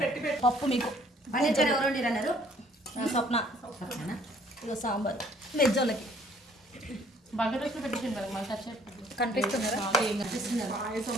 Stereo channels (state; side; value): normal; both; correlation 0.59